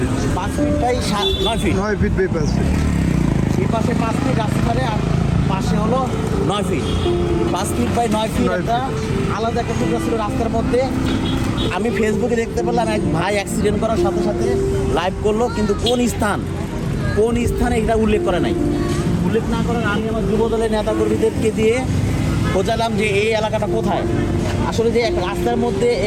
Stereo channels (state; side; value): identical; both; correlation 1.00